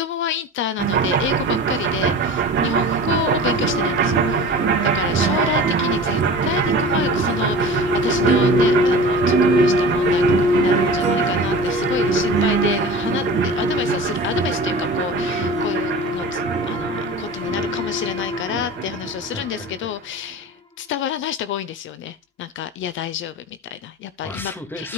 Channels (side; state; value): both; normal; correlation 0.36